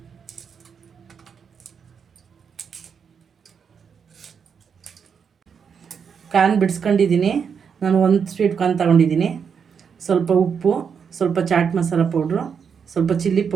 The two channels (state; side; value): quieter; left; 6.7 dB